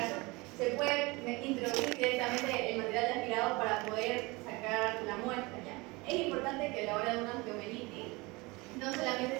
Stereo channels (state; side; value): quieter; left; 24.4 dB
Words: se puede introducir directamente el material de aspirado para poder sacar la muestra. ¿Ya? Es importante que a la hora de una osteomelitis no solamente